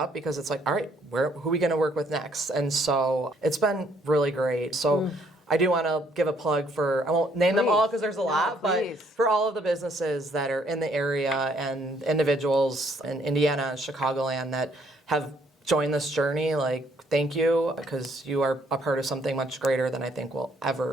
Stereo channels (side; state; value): both; normal; correlation 0.67